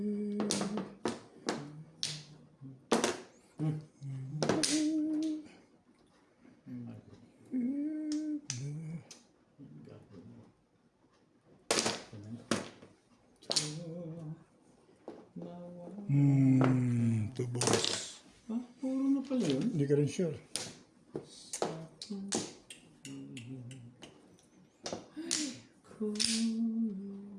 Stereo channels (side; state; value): both; identical; correlation 1.00